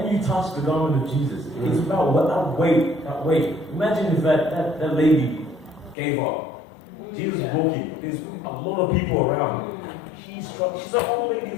you touch the garment of Jesus, it's about that weight. Imagine if that lady gave up. Jesus is walking. There's a lot of people around. She's an old lady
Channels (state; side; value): drops out; right; at 6.0 s